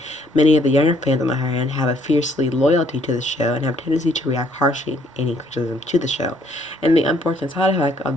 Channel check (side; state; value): both; normal; correlation 0.65